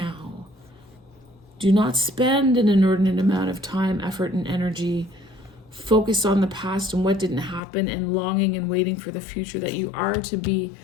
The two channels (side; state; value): right; drops out; at 7.6 s